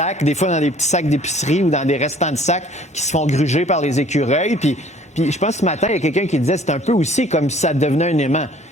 des fois dans des petits sacs d'épicerie ou dans des restants de sacs qui se font gruger par les écureuils. Puis je pense que ce matin, il y a quelqu'un qui disait, c'est un peu aussi comme si ça devenait un aimant.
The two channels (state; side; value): normal; both; correlation 0.54